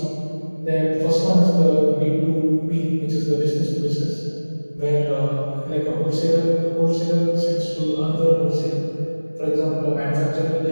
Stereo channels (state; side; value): inverted; both; correlation -1.00